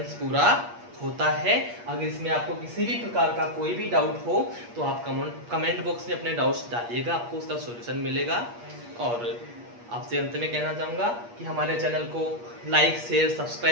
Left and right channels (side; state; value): left; late; 8.4 ms